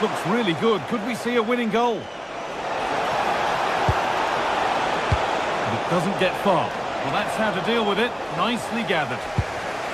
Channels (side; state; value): both; identical; correlation 1.00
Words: looks really good. Could we see a winning goal? But it doesn't get far. Well, that's how to deal with it. Nicely gathered.